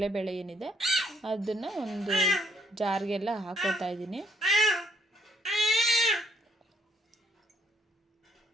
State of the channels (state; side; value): normal; both; correlation 0.69